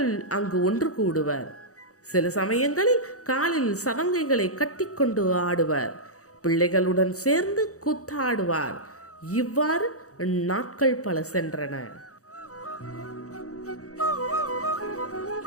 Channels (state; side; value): late; right; 0.65 ms